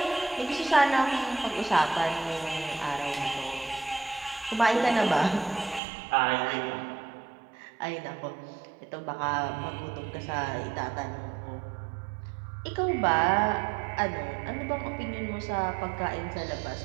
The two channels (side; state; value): left; drops out; at 5.8 s